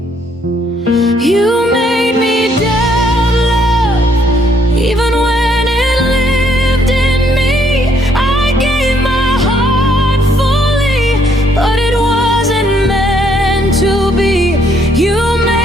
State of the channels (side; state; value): both; normal; correlation 0.68